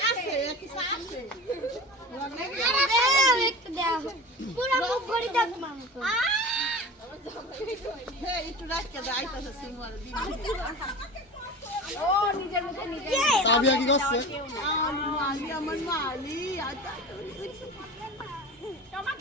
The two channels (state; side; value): normal; both; correlation 0.33